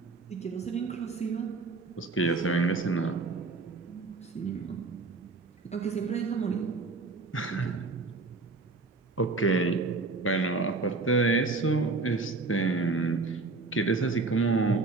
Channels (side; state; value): left; quieter; 3.8 dB